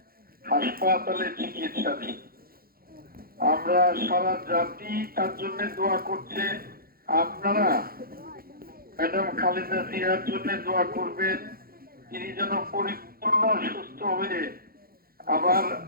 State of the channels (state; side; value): late; left; 0.43 ms